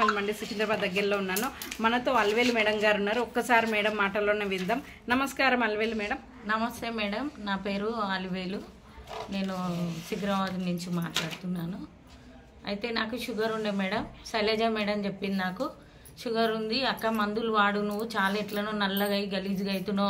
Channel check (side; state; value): both; identical; correlation 1.00